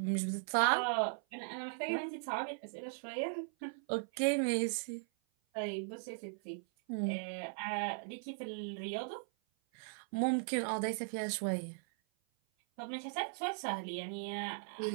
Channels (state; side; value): silent; left; 52 dB below the other